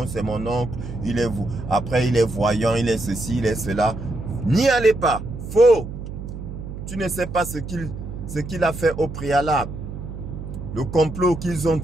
c'est mon oncle. Il est vous. Après, il est voyant, il est ceci, il est cela. N'y allez pas. Faux. Tu ne sais pas ce qu'il a fait au préalable. Le complot qu'ils ont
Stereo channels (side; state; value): right; noise; hum, 9 dB below the sound